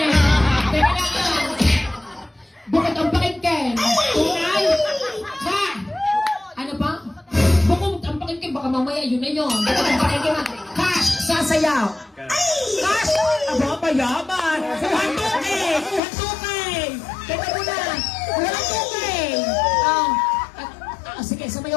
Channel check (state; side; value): drops out; right; at 16.0 s